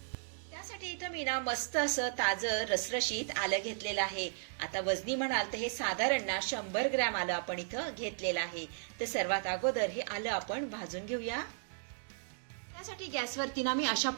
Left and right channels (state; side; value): silent; left; digital silence